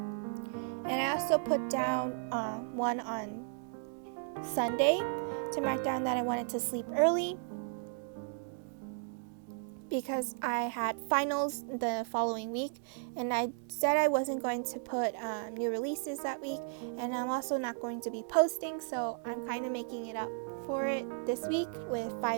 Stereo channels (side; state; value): left; silent; digital silence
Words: And I also put down one on Sunday to mark down that I wanted to sleep early, because I had finals the following week, and I said I wasn't going to put new releases that week, and I'm also not going to be posting, so I'm kind of making it up for it this week with